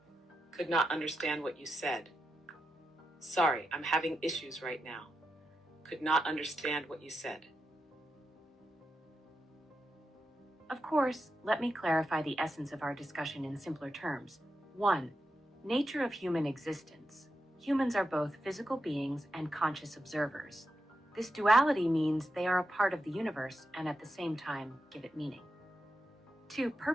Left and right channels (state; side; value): normal; both; correlation 0.88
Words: Could not understand what you said. Sorry, I'm having issues right now. Could not understand what you said. Of course, let me clarify the essence of our discussion in simpler terms. 1. Nature of human existence. Humans are both physical beings and conscious observers. This duality means they are a part of the universe and at the same time give it meaning. 2.